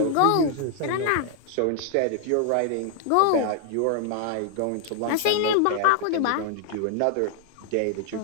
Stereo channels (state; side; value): different; both; correlation 0.00